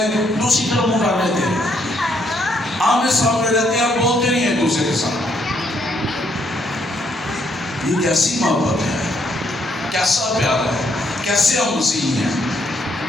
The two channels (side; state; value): both; normal; correlation 0.72